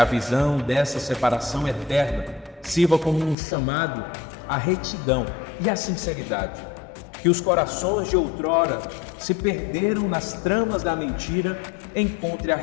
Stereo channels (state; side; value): drops out; right; at 3.4 s